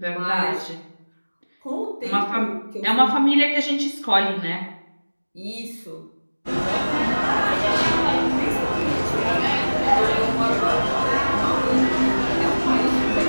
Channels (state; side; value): inverted; both; correlation -1.00